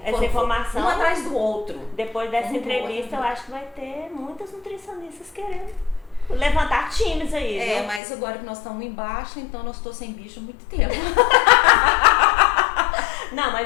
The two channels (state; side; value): drops out; right; at 8.0 s